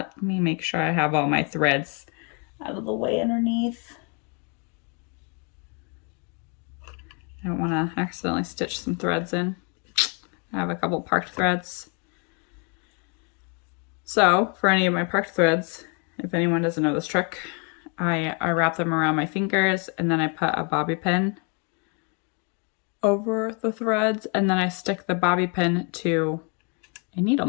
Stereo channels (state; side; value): quieter; right; 36.2 dB